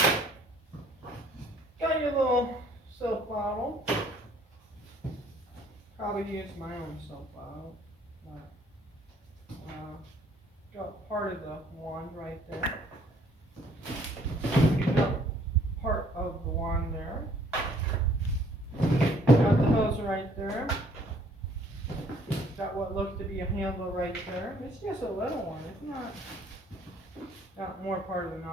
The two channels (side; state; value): both; normal; correlation 0.61